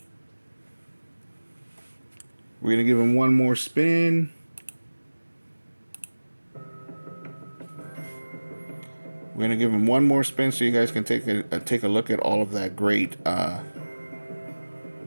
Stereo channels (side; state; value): both; inverted; correlation -1.00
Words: We're going to give him one more spin. We're going to give him one more spin so you guys can take a look at all of that great